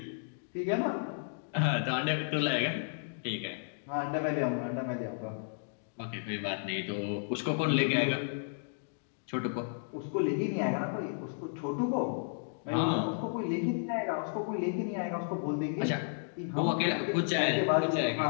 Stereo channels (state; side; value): silent; right; digital silence